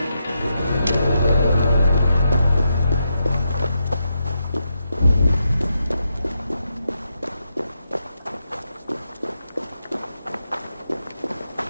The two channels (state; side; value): inverted; both; correlation -0.83